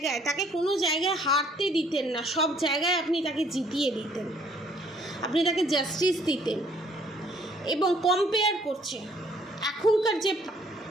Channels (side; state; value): both; normal; correlation 0.62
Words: তাকে কোনো জায়গায় হারতে দিতেন না, সব জায়গায় আপনি তাকে জিতিয়ে দিতেন, আপনি তাকে জাস্টিস দিতেন। এবং কম্পেয়ার করছে, এখনকার যে